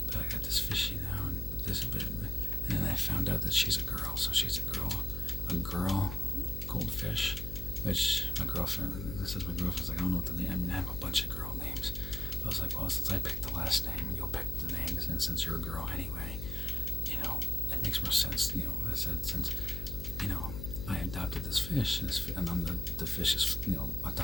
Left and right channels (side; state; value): left; noise; hum, 6 dB below the sound